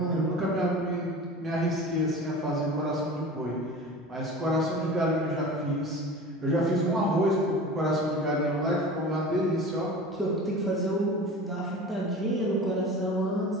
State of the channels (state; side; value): normal; both; correlation 0.37